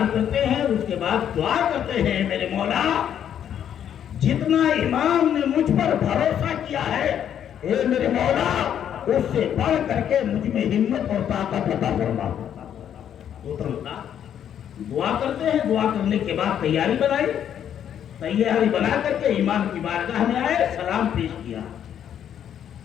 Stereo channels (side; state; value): right; quieter; 9.5 dB